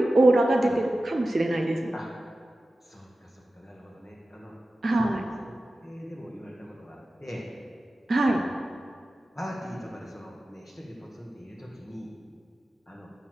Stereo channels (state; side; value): normal; both; correlation 0.95